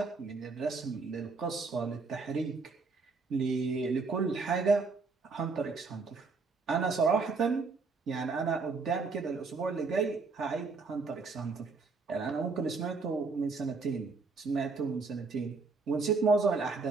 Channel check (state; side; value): quieter; left; 4.3 dB